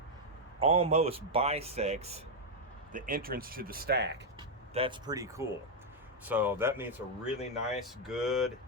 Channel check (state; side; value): normal; both; correlation 0.00